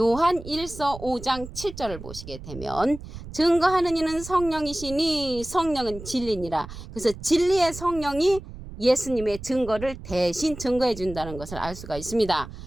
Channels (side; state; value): right; noise; rumble, 13 dB below the sound